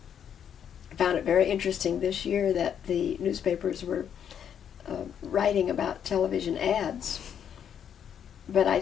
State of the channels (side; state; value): right; quieter; 8.7 dB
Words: found it very interesting this year that the newspapers were writing about television ads, but I